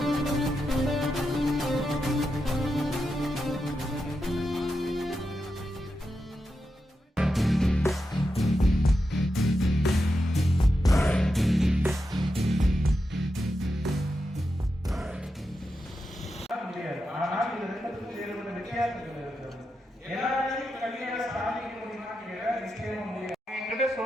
ஆனால் இது ரெண்டுக்கும் வேறுபட்ட வித்தியாசங்கள் இருக்கிறது. எல்லாரையும் கல்வியால சாதிக்க முடியுமான்னு கேட்டா நிச்சயமா முடியாது. என்கிட்ட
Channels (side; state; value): both; normal; correlation 0.88